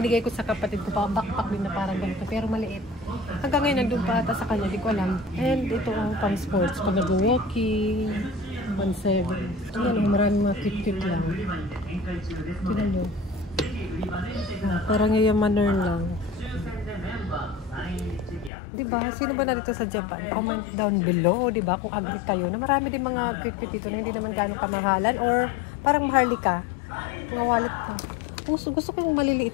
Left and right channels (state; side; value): drops out; right; at 18.5 s